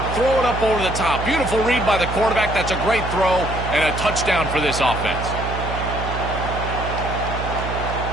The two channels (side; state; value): right; noise; hum, 5 dB below the sound